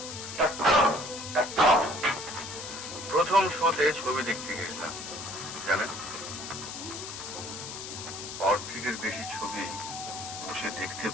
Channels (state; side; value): noise; left; hiss, 9 dB below the sound